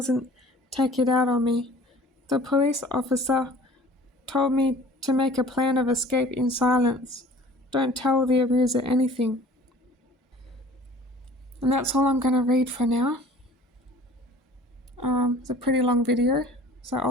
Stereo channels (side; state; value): both; normal; correlation 0.47